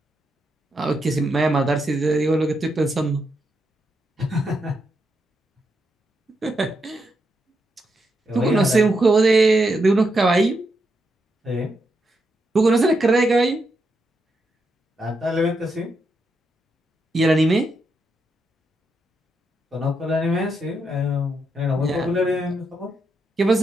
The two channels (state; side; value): normal; both; correlation 0.82